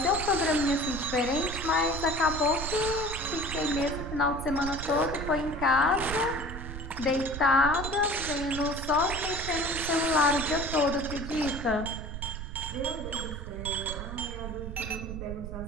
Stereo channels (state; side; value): noise; right; rumble, 8 dB below the sound